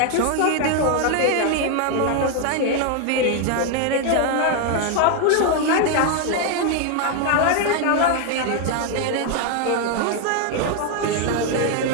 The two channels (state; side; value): different; both; correlation 0.01